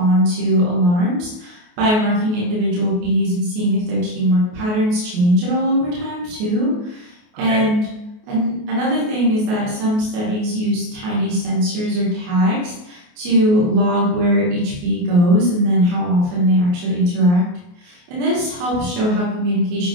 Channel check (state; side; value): late; left; 28 ms